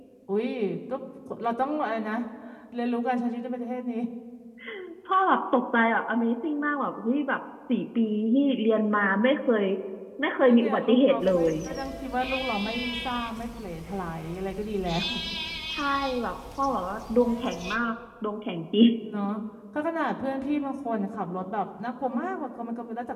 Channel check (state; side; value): identical; both; correlation 1.00